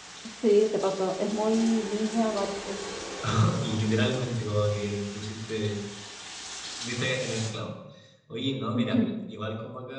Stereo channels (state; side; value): identical; both; correlation 1.00